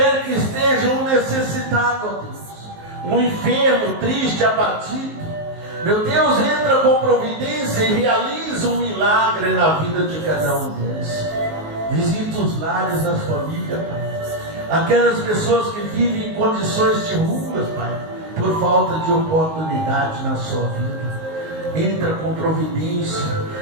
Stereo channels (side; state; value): left; late; 19 ms